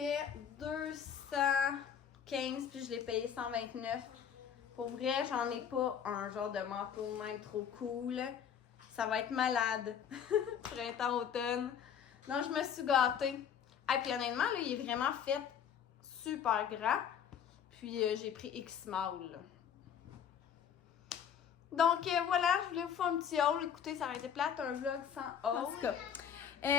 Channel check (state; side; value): quieter; right; 8.3 dB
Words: 215, puis je l'ai payé 129. Pour vrai, j'en ai pas un genre de manteau de même trop cool. Ça va être malade. Printemps-automne. Donc, je me suis gâtée. Et puis honnêtement, là, il est vraiment fait super grand. Puis, j'ai pris X-Small, là. Donc, voilà, je voulais vous faire un petit haul. Écoutez, ça aurait été plate, un vlog sans haul. En tout cas,